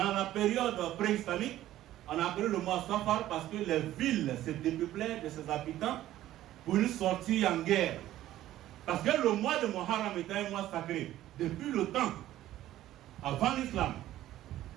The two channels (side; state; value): left; quieter; 13.9 dB